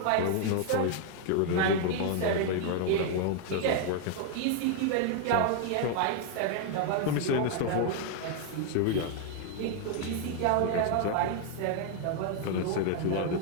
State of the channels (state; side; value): different; both; correlation 0.00